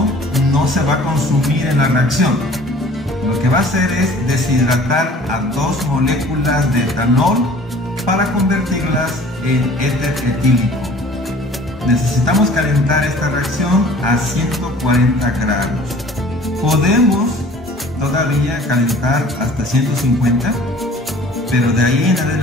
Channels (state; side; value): normal; both; correlation 0.49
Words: no se va a consumir en la reacción. Lo que va a hacer es deshidratar a dos moléculas de etanol para convertirlas en éter etílico. Necesitamos calentar esta reacción a 140 grados. Podemos todavía calentar hasta 150, pero de ahí en